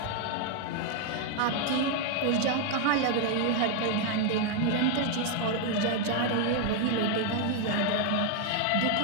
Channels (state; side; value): different; both; correlation 0.01